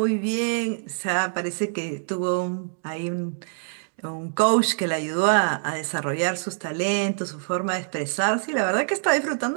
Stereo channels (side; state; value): left; silent; digital silence